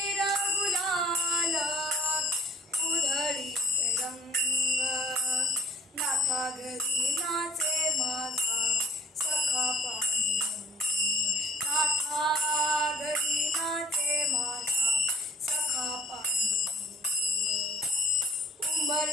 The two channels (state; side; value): normal; both; correlation 0.54